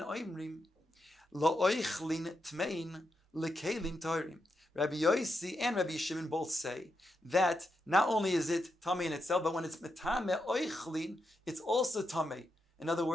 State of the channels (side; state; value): both; normal; correlation 0.84